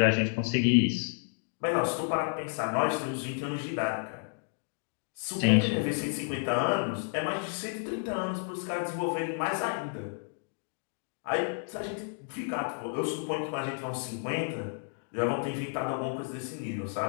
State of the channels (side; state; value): right; silent; 57 dB below the other